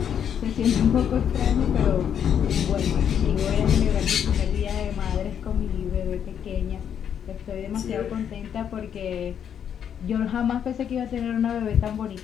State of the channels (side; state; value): right; quieter; 8.6 dB